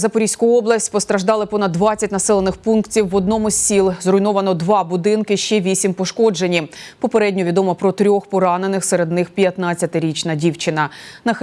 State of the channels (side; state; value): both; identical; correlation 1.00